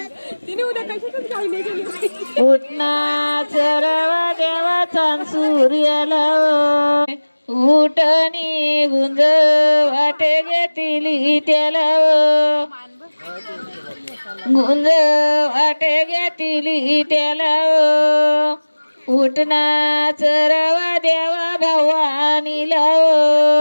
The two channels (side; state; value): both; inverted; correlation -1.00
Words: उठना चरवा देवाचा सूर्याला उठणी गुंज वाटे घेतली त्याला गुंज वाटे घेतली त्याला उठना चरवा देवा भवानीला